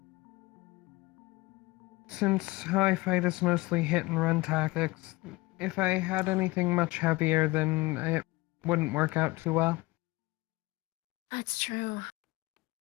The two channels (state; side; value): quieter; right; 21.8 dB